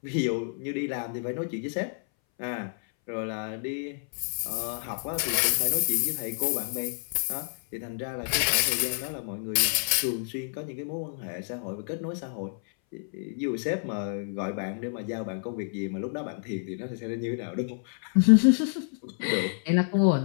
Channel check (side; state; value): right; silent; 59 dB below the other